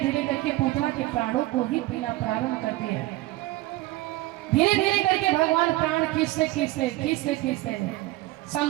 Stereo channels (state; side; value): quieter; left; 18.3 dB